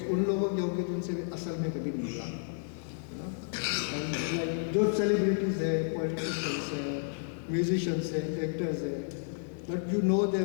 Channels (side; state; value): right; silent; digital silence